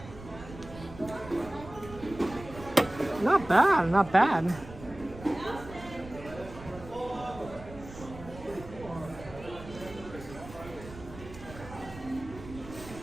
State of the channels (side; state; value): right; noise; rumble, 15 dB below the sound